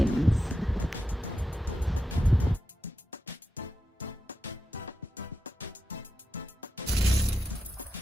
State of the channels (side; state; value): both; normal; correlation 0.88